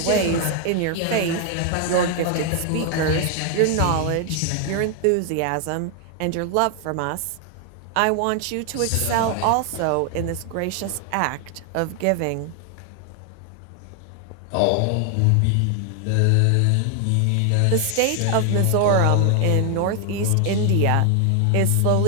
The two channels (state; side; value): different; both; correlation 0.00